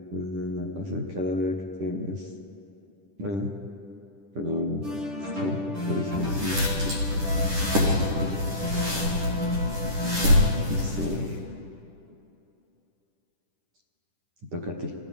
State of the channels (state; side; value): late; left; 10 ms